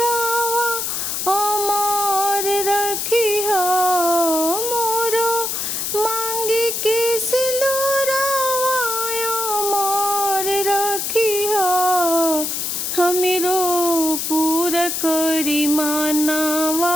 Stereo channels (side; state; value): left; noise; hiss, 2 dB below the sound